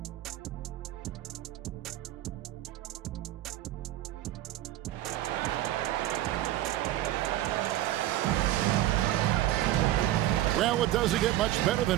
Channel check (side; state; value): left; quieter; 14.3 dB